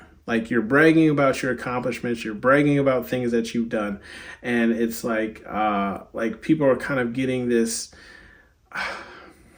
Like you're bragging about your accomplishments, you're bragging about things that you've done, and it's like people are kind of getting this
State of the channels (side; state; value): both; identical; correlation 1.00